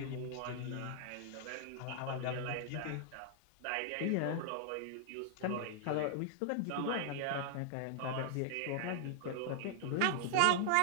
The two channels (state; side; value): different; both; correlation 0.00